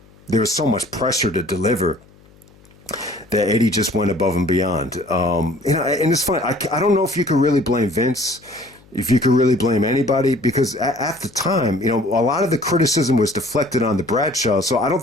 was so much pressure to deliver that Eddie just went above and beyond. You know, and it's funny, I don't know if you could really blame Vince. if you could really blame anybody, because at the time, you know, a lot of the criticism was deflected on the Bradshaw. So I don't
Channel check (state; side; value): noise; left; hum, 27 dB below the sound